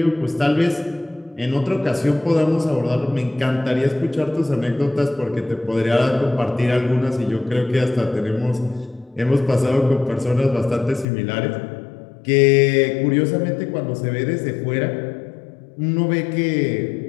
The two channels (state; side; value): drops out; right; at 11.1 s